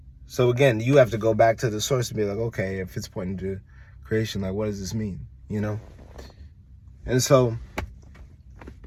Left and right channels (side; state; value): both; identical; correlation 1.00